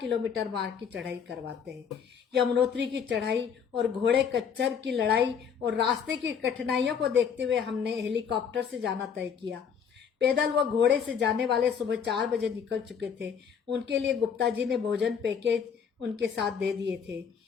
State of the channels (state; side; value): quieter; right; 7.0 dB